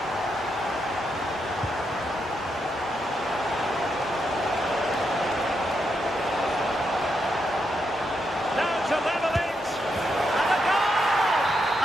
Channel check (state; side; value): normal; both; correlation 0.82